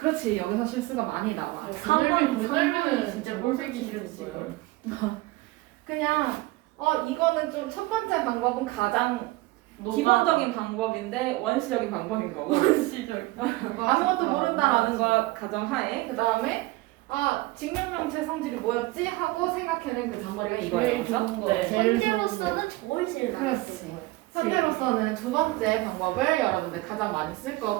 여기서 실수가 많이 나와. 건널비는 진짜 꼴보기 싫었어요. 그냥 이거는 좀 첫 번째 방법은 가장 기본적인 방법인데 원시적인 방법인 거고 시절. 아무것도 모른다라는 걸 가정하에 그 다음에 직육면체 성질이 뭐였지 하고 생각해낸 그 잔머리가 이거예요. 제일 그렇죠? 좋은 거. 네. 제일 좋은 거. 현재로서는 저걸 제일 많이 그렇지. 써요. 현재로서는 두 번째 방법을 여러분들 가장 많이 쓸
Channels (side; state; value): left; quieter; 20.2 dB